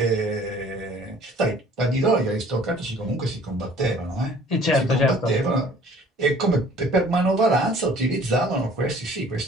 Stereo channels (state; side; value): normal; both; correlation 0.52